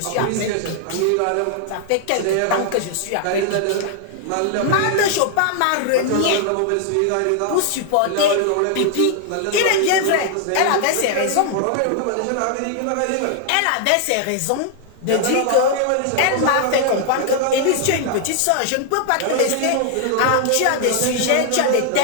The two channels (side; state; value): both; different; correlation 0.00